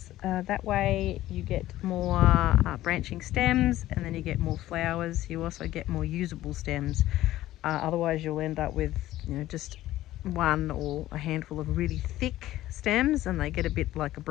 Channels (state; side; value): quieter; right; 14.9 dB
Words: that way you get more branching stems, and then you get more flowers. You also get more usable stems. Otherwise you'll end up with, you know, just one or a handful of really thick stems, and they get a bit like a